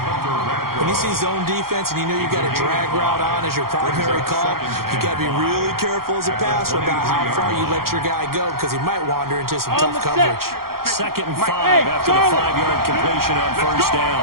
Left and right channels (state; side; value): late; left; 0.93 ms